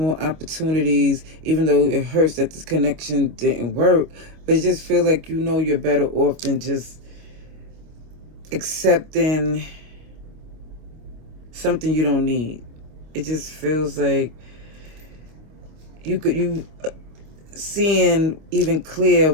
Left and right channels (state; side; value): late; left; 25 ms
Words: opportunities, even though it hurts that this connection didn't work. But it just feels like you know you're better off than just accepting something you don't need. It just feels like you seeing even clear